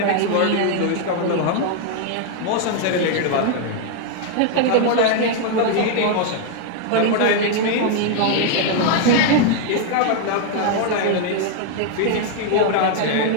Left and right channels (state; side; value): different; both; correlation 0.00